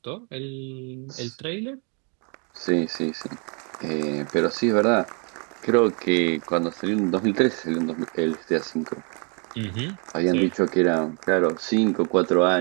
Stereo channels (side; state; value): left; quieter; 36.0 dB